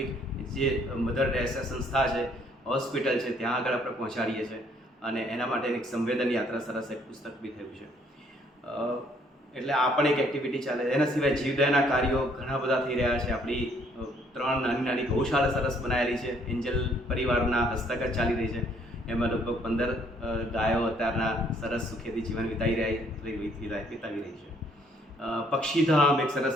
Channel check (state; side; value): normal; both; correlation 0.64